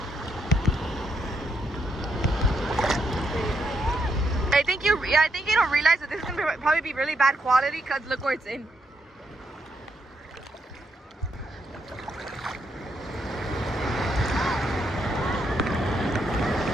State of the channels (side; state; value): both; normal; correlation 0.78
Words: I think you don't realize that this is gonna probably be really bad quality because look where it's in.